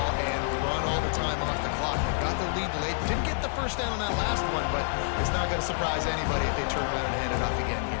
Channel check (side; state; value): right; silent; digital silence